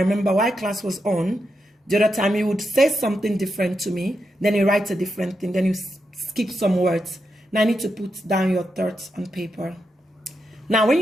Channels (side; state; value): both; normal; correlation 0.85